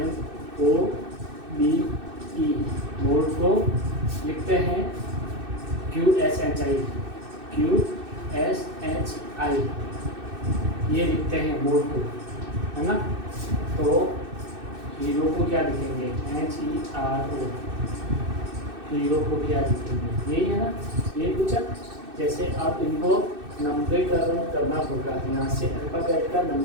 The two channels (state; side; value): late; left; 2.6 ms